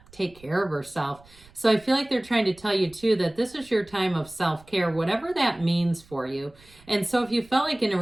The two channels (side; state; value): right; noise; rumble, 26 dB below the sound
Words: take care of herself. So I feel like they're trying to tell you too that this is your time of self-care, whatever that means for you. And so if you felt like in a